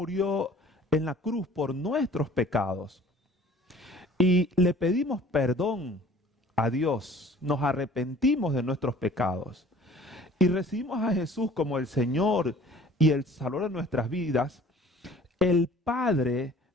en la cruz por nuestros pecados y le pedimos perdón a Dios, nos arrepentimos de nuestros pecados y recibimos a Jesús como el Señor y el Salvador de nuestras vidas, el Padre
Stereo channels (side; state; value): both; normal; correlation 0.50